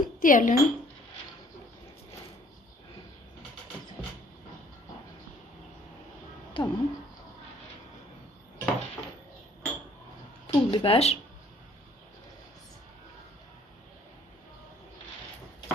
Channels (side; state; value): both; normal; correlation 0.59